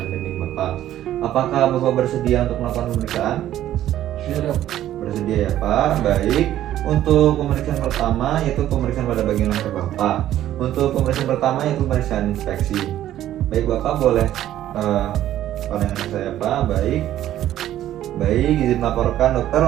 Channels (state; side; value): quieter; left; 12.6 dB